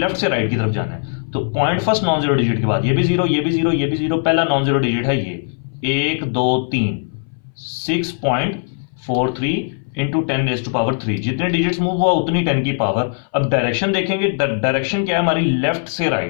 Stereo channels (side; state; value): right; silent; 62 dB below the other